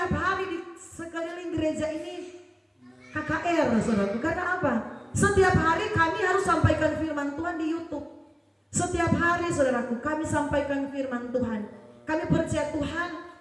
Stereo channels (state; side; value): identical; both; correlation 1.00